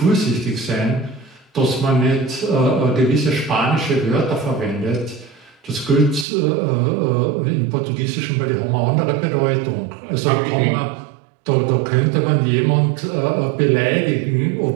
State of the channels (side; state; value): left; drops out; at 6.2 s